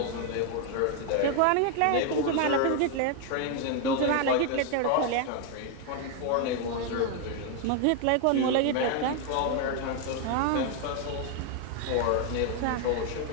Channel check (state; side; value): different; both; correlation 0.01